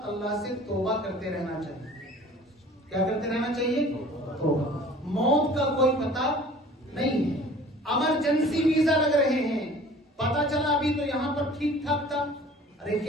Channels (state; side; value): normal; both; correlation 0.47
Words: اللہ سے توبہ کرتے رہنا چاہیے. کیا کرتے رہنا چاہیے؟ توبہ. موت کا کوئی پتہ نہیں ہے. ایمرجنسی ویزا لگ رہے ہیں, پتا چلا ابھی تو یہاں پر ٹھیک ٹھاک تھا, ارے